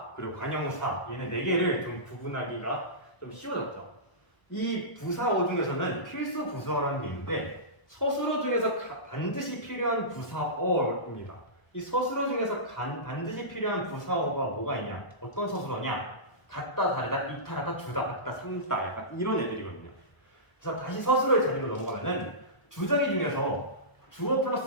그리고 관용사 얘네 4개를 좀 구분하기가 좀 쉬워졌죠. 이 부사어 중에서는 필수 부사어라는 게 있는데 서술어 중에서 반드시 필요한 부사어입니다. 이 서술어 중에서 반드시 필요한 부사어가 뭐가 있냐? 어떤 서술어냐? 같다, 다르다, 이탈하다, 주다, 같다, 산다 약간 이런 애들이거든요. 그래서 다시 서술어의 재미로 넘어가면은 주저기 중에서 주어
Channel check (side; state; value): right; late; 1.0 ms